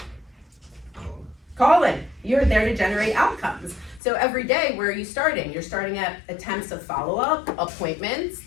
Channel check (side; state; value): right; drops out; at 4.0 s